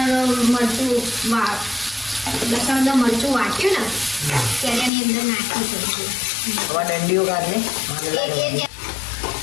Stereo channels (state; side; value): drops out; right; at 4.9 s